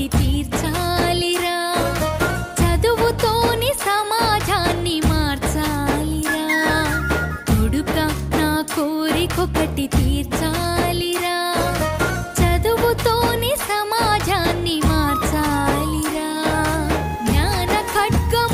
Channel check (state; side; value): identical; both; correlation 1.00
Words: కోరికొకటి తీర్చాలిరా, చదువుతోని సమాజాన్ని మార్చాలిరా, కొడుక నా కోరికొకటి తీర్చాలిరా, చదువుతోని సమాజాన్ని మార్చాలిరా. జ్ఞాన